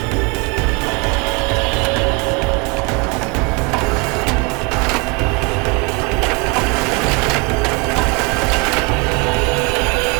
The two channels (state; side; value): quieter; left; 28.5 dB